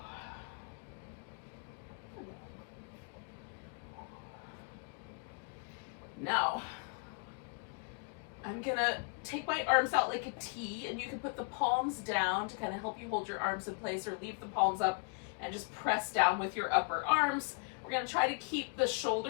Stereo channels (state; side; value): quieter; right; 38.2 dB